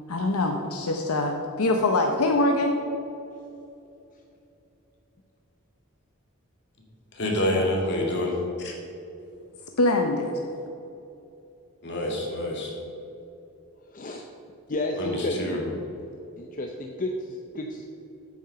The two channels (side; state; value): both; normal; correlation 0.03